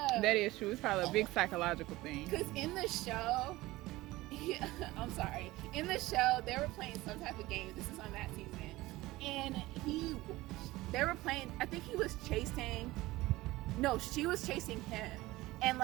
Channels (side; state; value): left; quieter; 18.7 dB